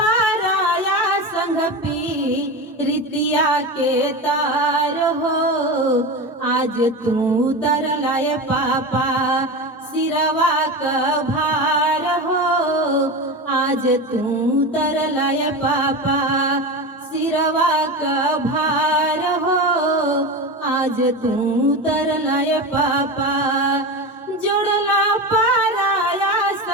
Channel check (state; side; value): normal; both; correlation 0.23